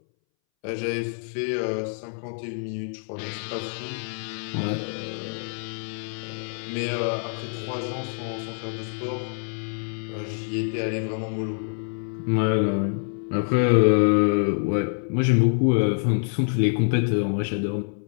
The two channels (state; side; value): silent; right; 61 dB below the other